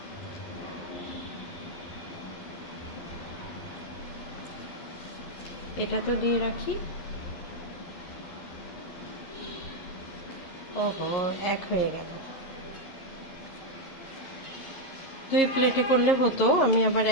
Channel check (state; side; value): late; right; 11 ms